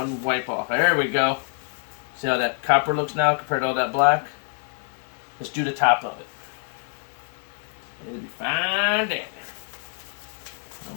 wipe off. There we go. See how that copper looks now compared to all that black? Let's do the top of it. It'll be fine down there. I'm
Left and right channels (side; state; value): right; silent; 61 dB below the other